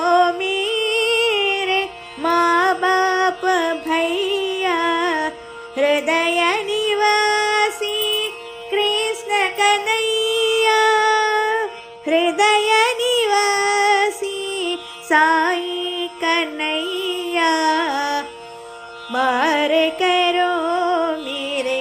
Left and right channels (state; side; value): identical; both; correlation 1.00